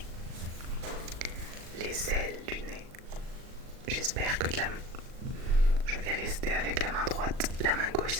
Les ailes du nez. J'espère que je vais rester avec la main droite. La main gauche,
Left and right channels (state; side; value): late; left; 38 ms